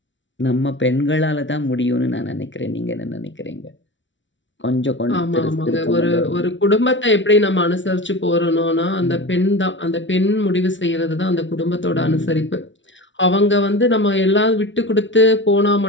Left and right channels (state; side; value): late; right; 0.55 ms